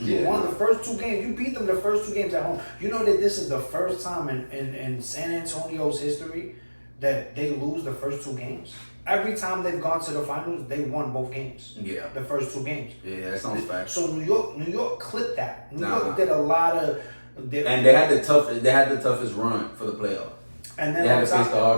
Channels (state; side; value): inverted; both; correlation -1.00